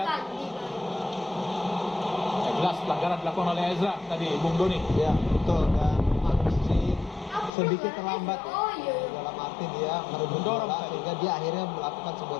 Jelas pelanggaran dilakukan oleh Ezra tadi, Bung Doni. Ya betul, dan masih sedikit terlambat ya. Dalam arti dia merebut Mendorong bola tadi. sehingga dia akhirnya melakukan sebuah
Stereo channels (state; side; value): drops out; right; at 7.5 s